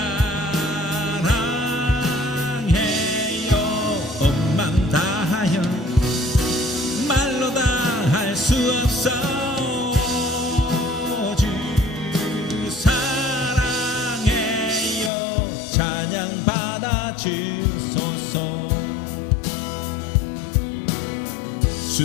사랑해요. 온 맘 다하여 말로 다 할 수 없어. 주 사랑해요. 찬양 받아주소서.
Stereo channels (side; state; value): right; drops out; at 15.1 s